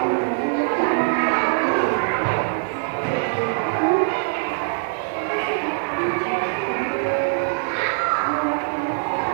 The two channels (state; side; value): silent; left; 57 dB below the other